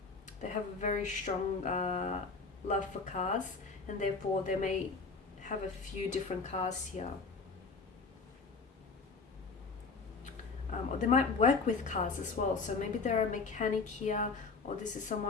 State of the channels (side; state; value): right; quieter; 4.4 dB